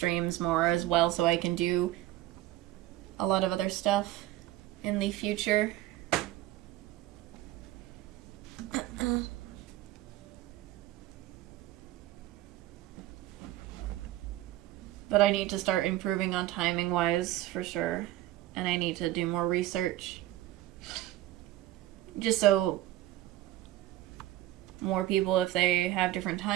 more as well, so I can do a lot of other stuff in the future. But I need to start improving on timing wise for sure. And I need to do more research. Just so more people, if they have different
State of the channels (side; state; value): left; quieter; 15.2 dB